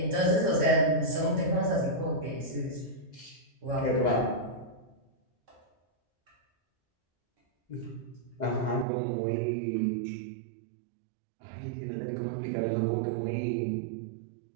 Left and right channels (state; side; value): drops out; left; at 8.8 s